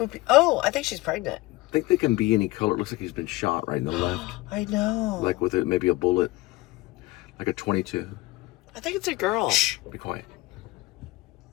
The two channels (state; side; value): quieter; right; 20.3 dB